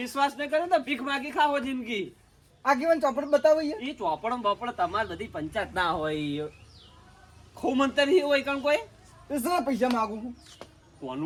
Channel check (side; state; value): both; identical; correlation 1.00